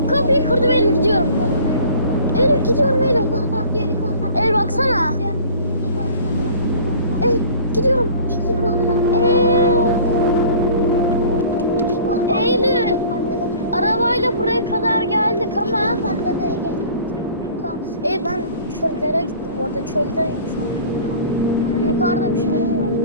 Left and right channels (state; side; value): inverted; both; correlation -0.46